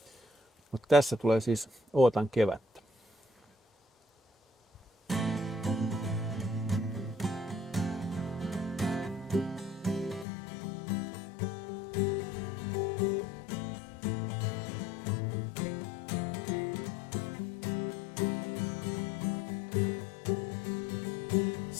Mutta tässä tulee siis Ootan kevättä.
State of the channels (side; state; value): right; drops out; at 10.2 s